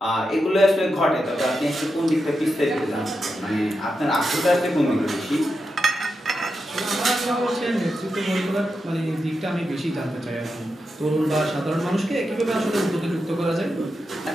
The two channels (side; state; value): both; normal; correlation 0.88